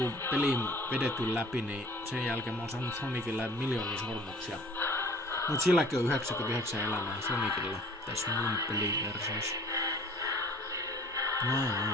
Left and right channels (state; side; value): normal; both; correlation 0.49